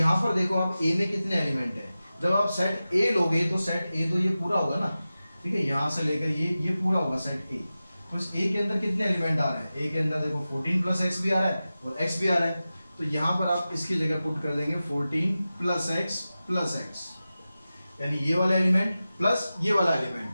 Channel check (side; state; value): both; inverted; correlation -0.95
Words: पर देखो आप A में कितने एलिमेंट है, जब आप सेट A लोगे तो सेट A तो ये पूरा होगा ना, ठीक है, यहाँ से लेकर ये पूरा होगा सेट A। तो इस A के अंदर कितने एलिमेंट आ रहे हैं, A के अंदर देखो 14 प्लस x भी आ रहा है और x भी आ रहा है। तो यहाँ पर आप इसकी जगह पुट कर देंगे 14 प्लस x, यानी ये वाला एलिमेंट प्लस ये वाला एलिमेंट।